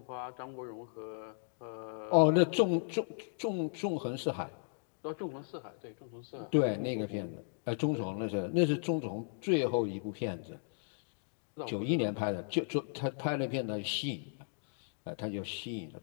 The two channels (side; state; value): right; silent; digital silence